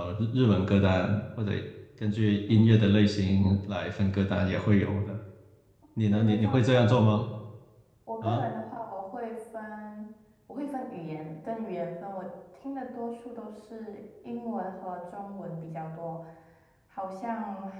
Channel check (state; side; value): identical; both; correlation 1.00